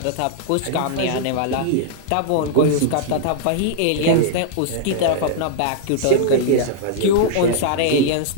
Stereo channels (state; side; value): different; both; correlation -0.01